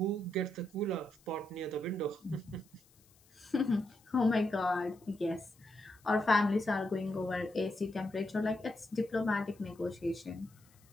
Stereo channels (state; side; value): noise; left; hiss, 30 dB below the sound